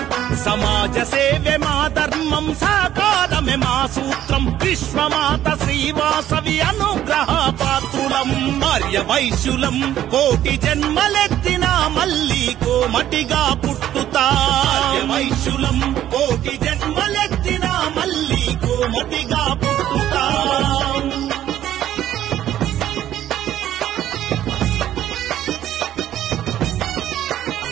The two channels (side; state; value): left; quieter; 12.1 dB